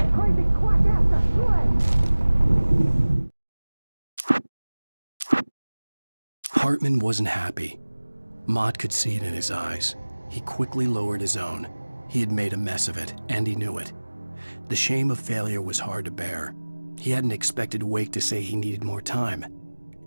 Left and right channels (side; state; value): both; inverted; correlation -1.00